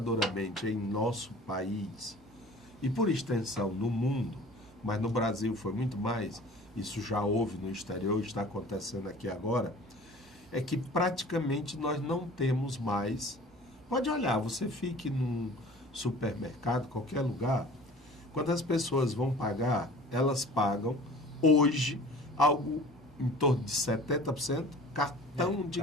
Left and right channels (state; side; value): normal; both; correlation 0.45